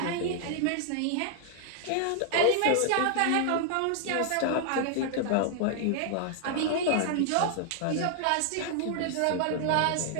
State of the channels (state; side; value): different; both; correlation 0.00